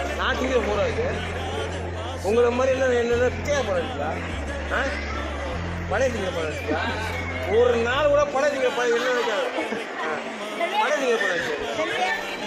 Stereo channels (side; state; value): both; identical; correlation 1.00